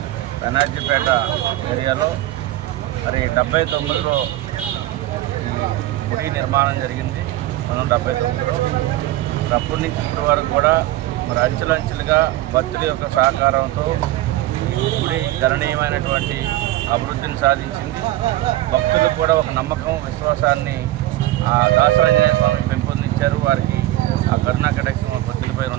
బెనర్జీపేట ఏరియాలో మరి 79లో గుడి నిర్మాణం జరిగింది. 1979లో అప్పటి నుంచి ఇప్పటి వరకు కూడా మరి అంచెలంచెలుగా భక్తుల యొక్క సహకారంతో గుడి గణనీయమైనటువంటి అభివృద్ధిని సాధించింది. భక్తులకు కూడా ఒక నమ్మకం, విశ్వాసాన్ని ఆ దాసాంజనేయ స్వామి పెంపొందించారు. వారికి ఆ కరుణా కటాక్షం భక్తులపై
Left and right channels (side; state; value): left; quieter; 15.8 dB